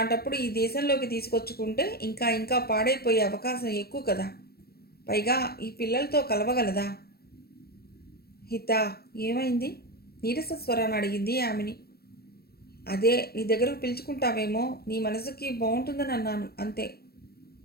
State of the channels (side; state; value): right; late; 0.45 ms